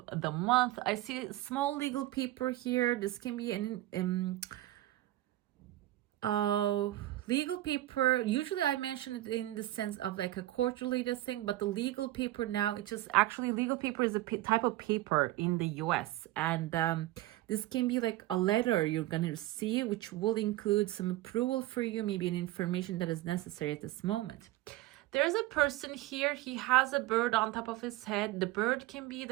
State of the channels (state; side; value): quieter; left; 16.6 dB